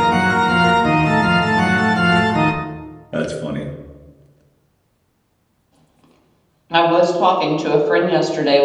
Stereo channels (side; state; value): both; identical; correlation 1.00